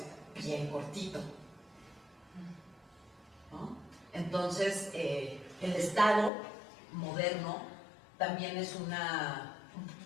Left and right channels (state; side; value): drops out; right; at 6.3 s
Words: bien cortito, ¿no? Entonces, el Estado moderno también es una